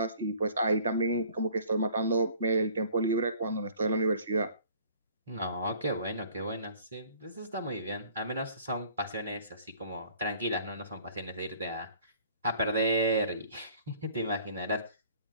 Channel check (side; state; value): both; inverted; correlation -0.52